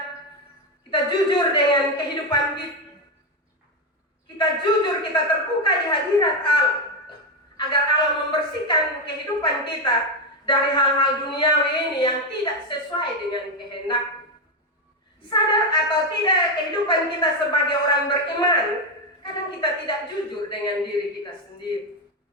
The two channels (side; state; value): both; normal; correlation 0.08